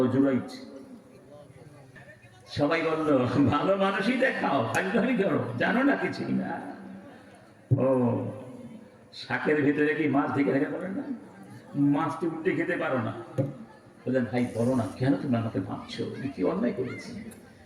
জুরাইজ। সবাই বলল ভালো মানুষই দেখাও, ভাগ্যহানি করো, জানো না কিছুই না। ও শাকের ভিতরে কি মাছ ঢেকে রেখে পারেন না? মাছটি উল্টে খেতে পারো না। বললেন ভাই বলো না, কেন তুমি আমাকে ভাবছো, কি অন্যায় করেছি?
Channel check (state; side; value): identical; both; correlation 1.00